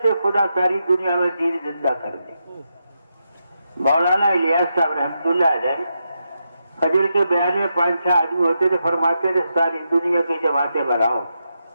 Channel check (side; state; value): both; inverted; correlation -0.85